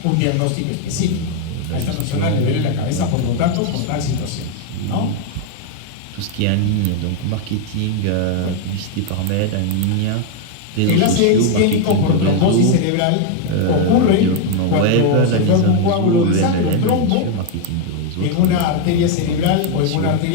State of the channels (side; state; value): both; different; correlation 0.01